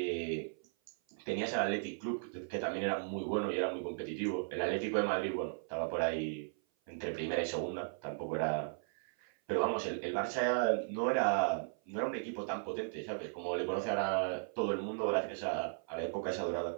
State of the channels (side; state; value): left; silent; 53 dB below the other